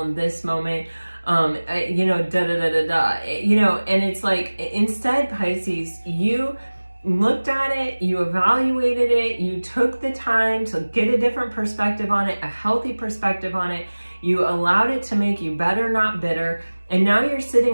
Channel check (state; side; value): inverted; both; correlation -1.00